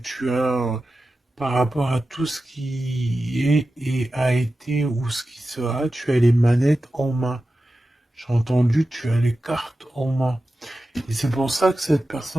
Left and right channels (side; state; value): both; normal; correlation 0.93